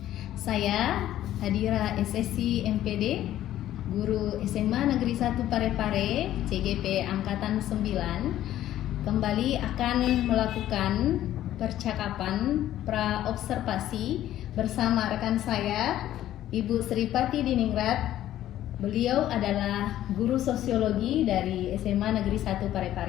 Saya Hadira SSC MPD, guru SMA Negeri 1 Parepare, CGP Angkatan 9, kembali akan melakukan percakapan pra-observasi bersama rekan saya, Ibu Sripati Diningrat. Beliau adalah guru sosiologi dari SMA Negeri 1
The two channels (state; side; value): quieter; right; 12.9 dB